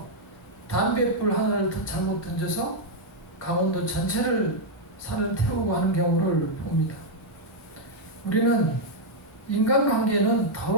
담뱃불 하나를 잘못 던져서 강원도 전체를 산을 태우고 하는 경우를 봅니다. 우리는 인간관계는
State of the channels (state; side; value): normal; both; correlation -0.02